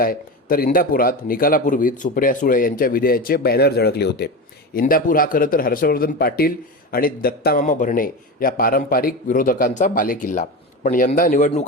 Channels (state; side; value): normal; both; correlation 0.23